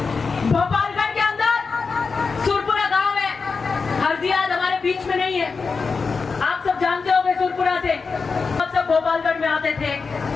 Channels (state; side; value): quieter; right; 4.8 dB